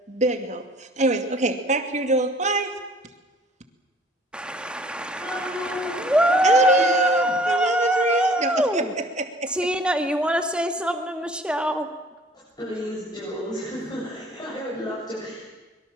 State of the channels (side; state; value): both; normal; correlation 0.53